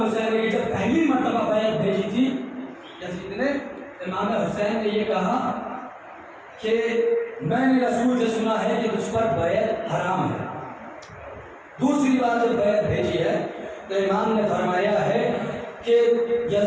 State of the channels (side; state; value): both; identical; correlation 1.00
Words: حسین نے کہ جب پہلی مرتبہ بیعت بھیجی تھی یزید نے، امام حسین نے یہ کہا کہ میں نے رسول سے سنا ہے کہ تجھ پر بیعت حرام ہے۔ دوسری بار جب بیعت بھیجی ہے تو امام نے فرمایا ہے کہ